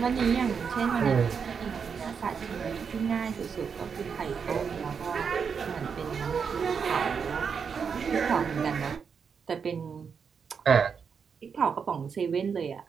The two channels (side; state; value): left; quieter; 6.3 dB